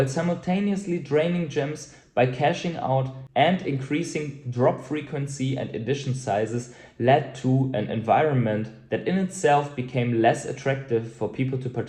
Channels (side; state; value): both; identical; correlation 1.00